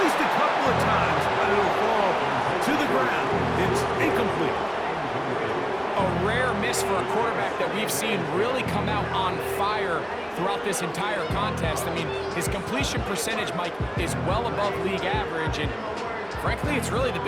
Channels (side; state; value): both; identical; correlation 1.00